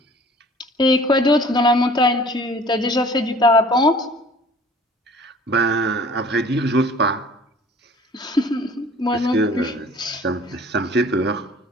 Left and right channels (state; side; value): normal; both; correlation 0.50